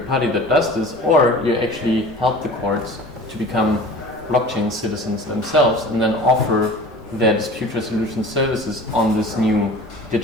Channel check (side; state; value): both; normal; correlation 0.41